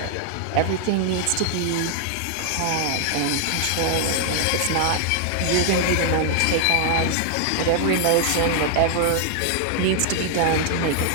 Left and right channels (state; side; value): different; both; correlation -0.01